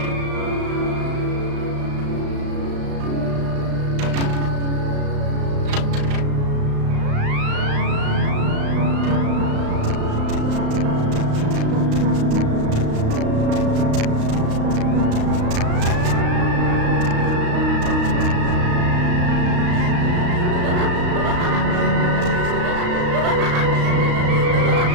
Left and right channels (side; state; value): left; late; 35 ms